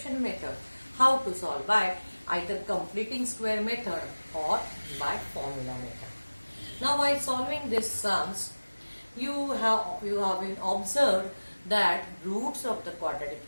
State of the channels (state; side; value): inverted; both; correlation -1.00